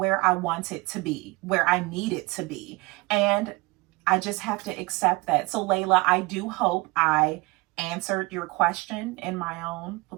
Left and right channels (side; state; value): left; quieter; 24.0 dB